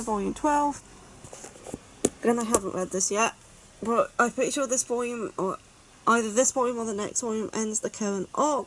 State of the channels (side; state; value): both; identical; correlation 1.00